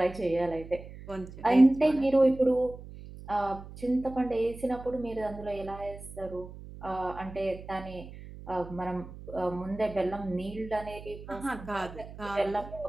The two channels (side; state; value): right; noise; hum, 14 dB below the sound